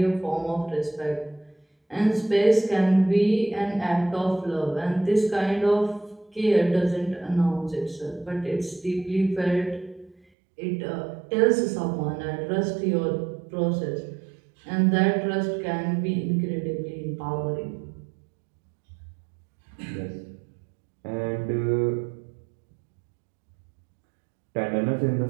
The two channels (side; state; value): left; drops out; at 10.2 s